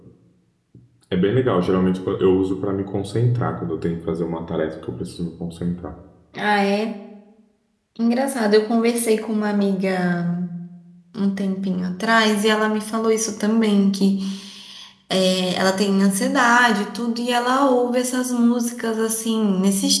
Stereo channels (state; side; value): identical; both; correlation 1.00